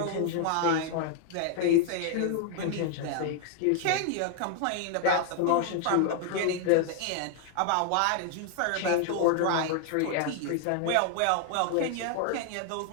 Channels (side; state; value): both; different; correlation 0.00